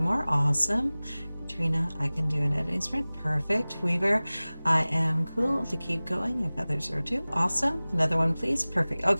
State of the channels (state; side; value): inverted; both; correlation -0.99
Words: Awesome. Katrina, I can do an editing sprint. Perfect. Weaver, I am cool to keep going if others are too. Awesome. Another one, please. Perfect.